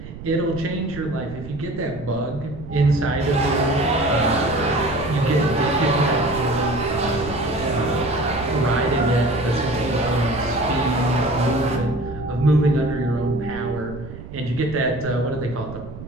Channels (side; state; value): right; noise; rumble, 13 dB below the sound